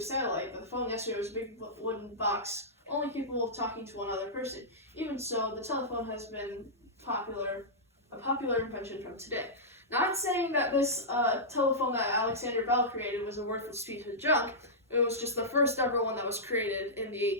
satellite, but the phone yesterday was a big wooden box, only capable of talking to one other person. Even so, the telephone has been a popular invention from today. Not saying that this telephone that Alexander Bell created was a worthless piece of junk. It was just the first ever one that was created in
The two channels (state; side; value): normal; both; correlation -0.13